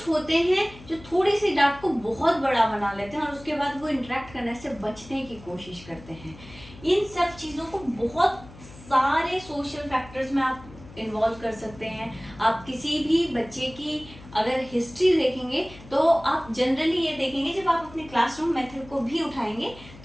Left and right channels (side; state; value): left; noise; hum, 19 dB below the sound